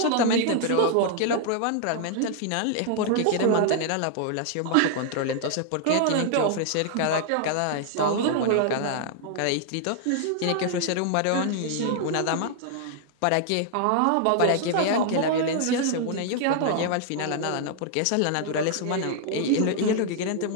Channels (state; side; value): different; both; correlation 0.00